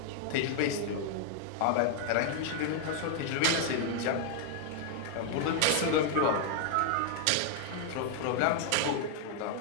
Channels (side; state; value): both; different; correlation 0.00